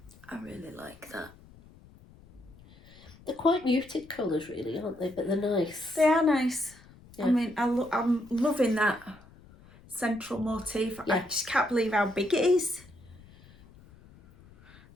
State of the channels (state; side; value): noise; left; rumble, 24 dB below the sound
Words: I really like that. They're quite muted colours really, aren't they? But they're nice. They are nice. Yeah. I mean, I'm loving that central motif. Yeah. I just can't believe how big it is.